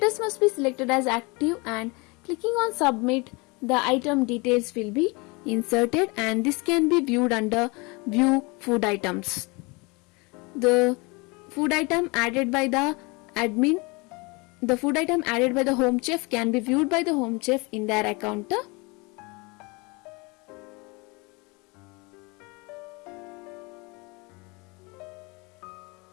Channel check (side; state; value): right; quieter; 27.5 dB